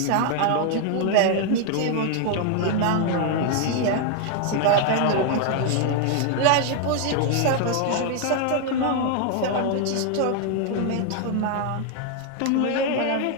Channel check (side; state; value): both; different; correlation 0.00